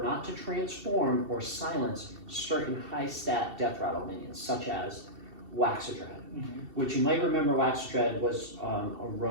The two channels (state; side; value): late; left; 2.7 ms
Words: not to transform or silence certain high stat death rattle minions, such as Waxadread, which you might remember Waxadread was a